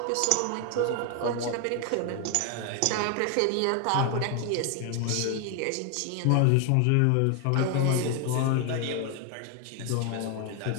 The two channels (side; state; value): both; different; correlation 0.01